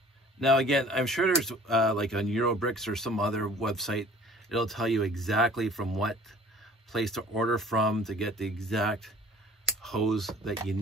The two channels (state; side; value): normal; both; correlation 0.50